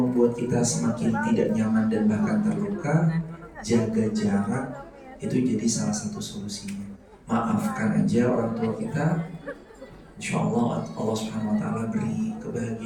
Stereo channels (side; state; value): both; identical; correlation 1.00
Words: kita semakin tidak nyaman dan bahkan terluka, jaga jarak, itu jadi salah satu solusinya. Maafkan aja orang tua kita. Insya Allah Allah Subhanahu Wa Taala beri